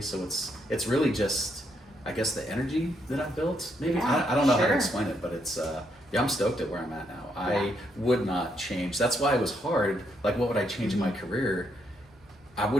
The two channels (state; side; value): normal; both; correlation 0.76